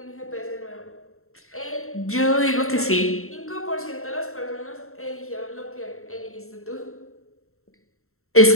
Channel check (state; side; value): late; right; 0.62 ms